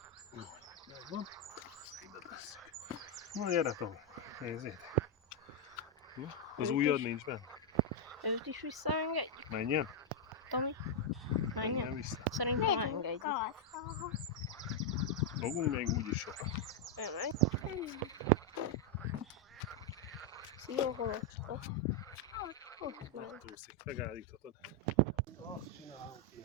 Megvan. Ide tesszük. Na, gyere, Tomi. Nézzétek. Na, az Őt ujjad is? nincs benne. Őt is visszaengedjük, Menjen. Tomi? Menjen Menjen? vissza. Szerintem Megyünk engedjük. haza. Fogunk még úgyis sokat. Elmegy. Szia, holocska. Ott megy. Túszik. Megállíthatod. Azt csinálunk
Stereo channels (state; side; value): normal; both; correlation -0.01